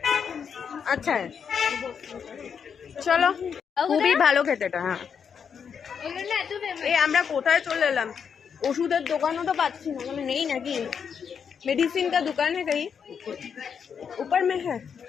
अच्छा है। চলো, খুবই ভালো খেতে এটা। হ্যাঁ ওগুলো না এত ফেমাস এই আমরা কোথায় চলে এলাম? ওষুধের দোকানও তো পাচ্ছি না, মানে নেই নাকি? मेडिसिन का दुकान है कहीं ऊपर में है?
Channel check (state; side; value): quieter; right; 7.0 dB